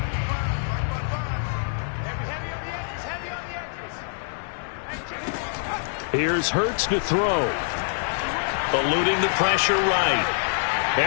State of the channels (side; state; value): right; silent; digital silence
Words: Here's Hurts to throw. Eluding the pressure right.